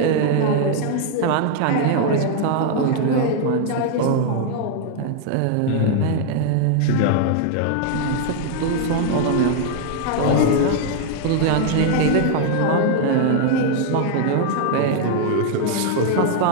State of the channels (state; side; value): different; both; correlation 0.00